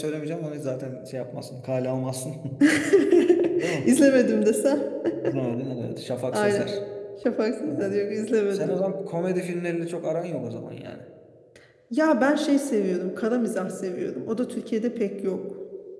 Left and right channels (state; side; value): identical; both; correlation 1.00